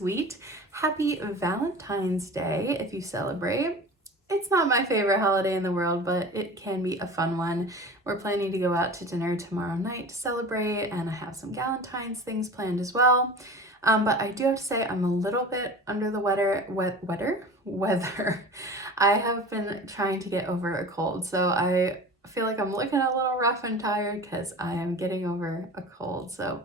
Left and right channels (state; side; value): normal; both; correlation 0.36